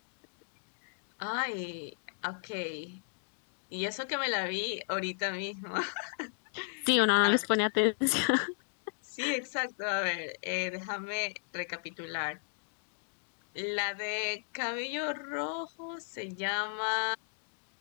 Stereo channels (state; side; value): silent; right; digital silence